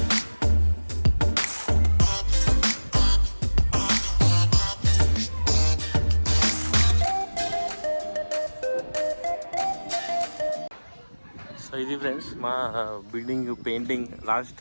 సో ఇది ఫ్రెండ్స్ మా బిల్డింగ్ పెయింటింగ్ లాస్ట్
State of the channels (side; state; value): both; inverted; correlation -1.00